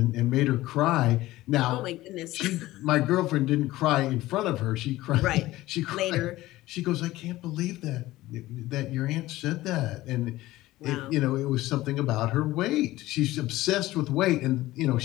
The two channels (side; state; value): right; quieter; 17.1 dB